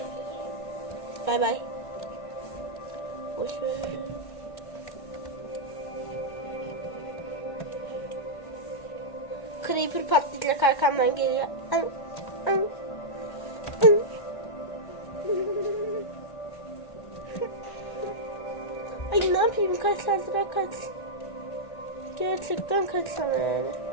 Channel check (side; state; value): right; late; 1.5 ms